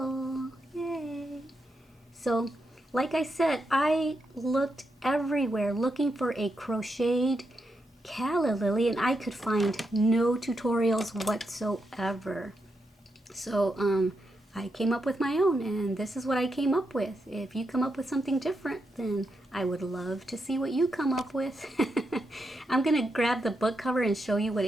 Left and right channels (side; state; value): both; normal; correlation 0.84